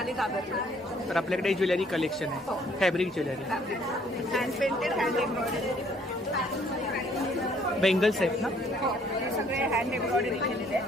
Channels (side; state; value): both; normal; correlation 0.62